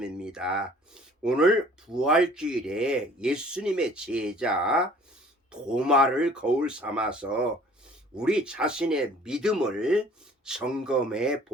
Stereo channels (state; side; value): normal; both; correlation 0.52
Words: 오늘 부활주일에 예수님의 제자 도마를 거울 삼아서 우리 자신의 믿음을 점검해